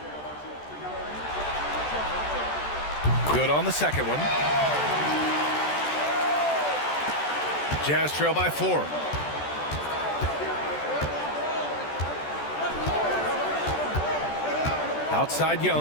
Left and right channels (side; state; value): right; late; 14 ms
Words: Good on the second one. Jazz trail by 4. Outside